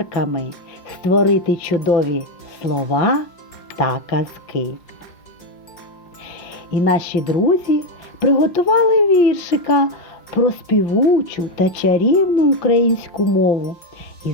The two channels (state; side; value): late; right; 5.5 ms